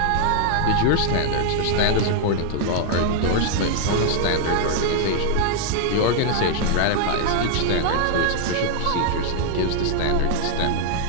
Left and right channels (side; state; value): both; different; correlation -0.01